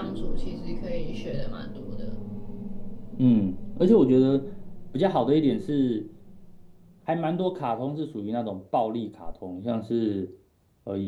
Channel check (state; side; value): identical; both; correlation 1.00